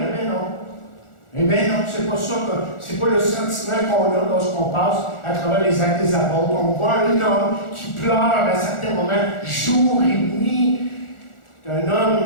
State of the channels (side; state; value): right; late; 1.4 ms